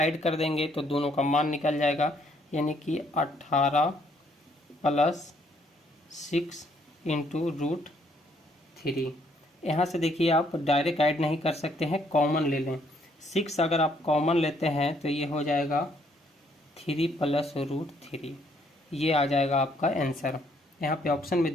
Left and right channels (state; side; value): normal; both; correlation 0.68